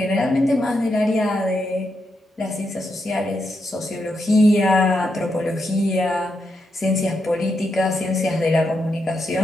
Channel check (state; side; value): normal; both; correlation 0.83